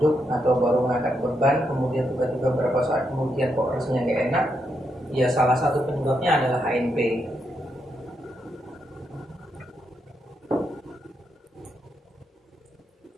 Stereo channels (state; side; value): normal; both; correlation 0.81